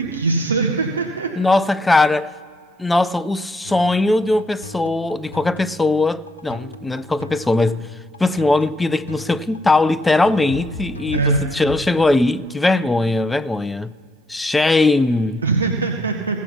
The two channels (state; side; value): normal; both; correlation 0.71